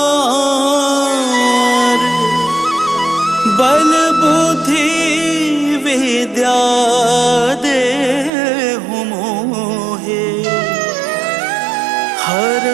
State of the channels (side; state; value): left; drops out; at 8.3 s